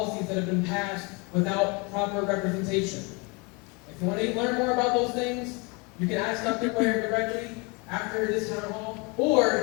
that have been passed without proper representation. If you want to learn more about those things, you can ask Dr. Cuellar directly after this town hall,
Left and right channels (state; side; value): quieter; right; 29.7 dB